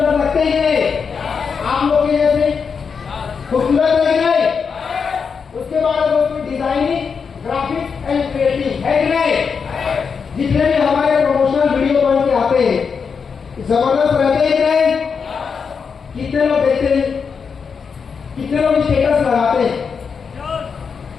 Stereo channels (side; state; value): right; quieter; 5.9 dB